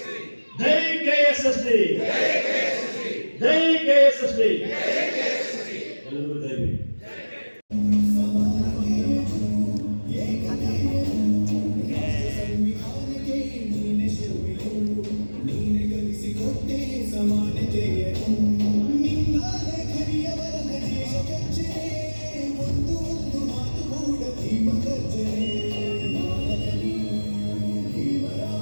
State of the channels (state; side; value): inverted; both; correlation -1.00